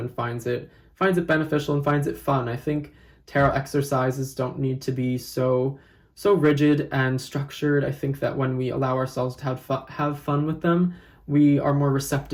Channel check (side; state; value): both; identical; correlation 1.00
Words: finds it beneficial and finds it fun. I think tarot exercises don't need to be so rigid and structured. I think that when we allow ourselves to have fun with them, we are more